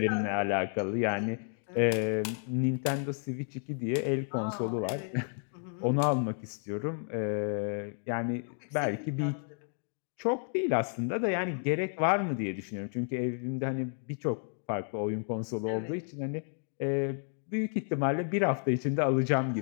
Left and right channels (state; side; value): silent; right; 57 dB below the other